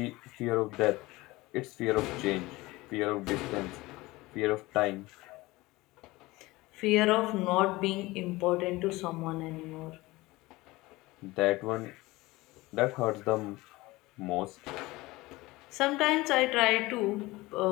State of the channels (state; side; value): quieter; right; 20.5 dB